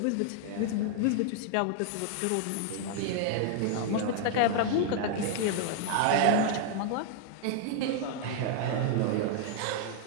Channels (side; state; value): both; different; correlation 0.00